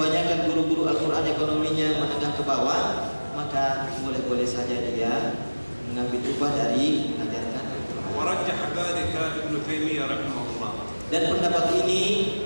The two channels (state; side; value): inverted; both; correlation -1.00